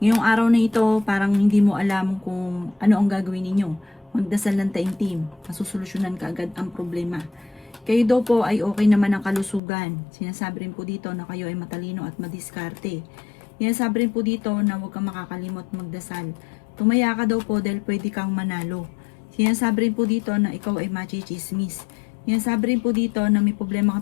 araw na ito, parang hindi mo alam kung ano ang gagawin ninyo. Magdasal ng taimtim, masusolusyonan ka agad ang problema. Kayo daw po ay okay naman ang kalusugan. Sinasabi rin po dito na kayo ay matalino at madiskarte. Sinasabi rin po dito na huwag kang makakalimot magdasal. Tumaya ka daw po dahil pwede kang manalo. Sinasabi rin po dito na ikaw ay machichismis. Sinasabi rin po dito na may problema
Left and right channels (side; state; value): right; drops out; at 9.6 s